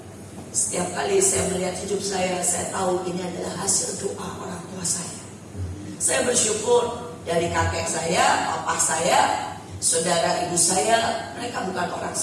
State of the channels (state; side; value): identical; both; correlation 1.00